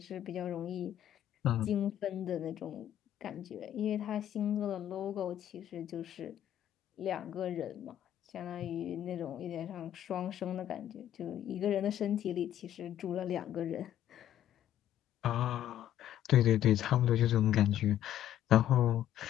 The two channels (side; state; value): right; quieter; 11.5 dB